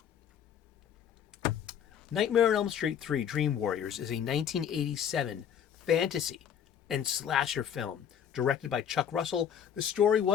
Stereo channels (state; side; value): quieter; right; 8.7 dB